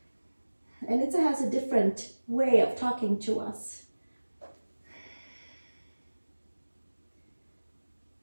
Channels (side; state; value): both; inverted; correlation -1.00